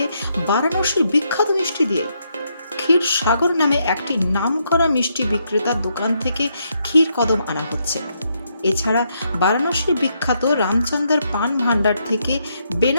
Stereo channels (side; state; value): both; inverted; correlation -0.77